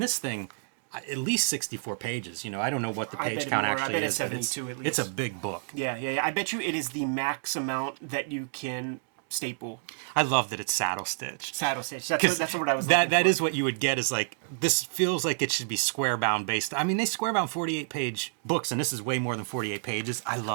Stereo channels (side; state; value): left; silent; digital silence